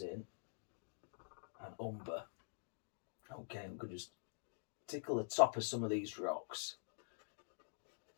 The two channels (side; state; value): right; silent; digital silence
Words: and umber. Okay, I'm going to just tickle the top of some of these rocks.